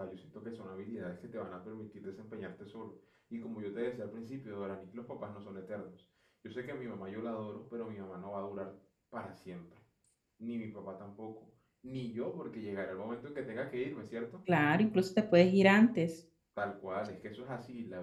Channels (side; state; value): both; identical; correlation 1.00